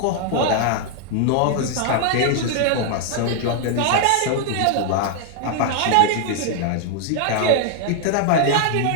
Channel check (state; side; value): different; both; correlation 0.00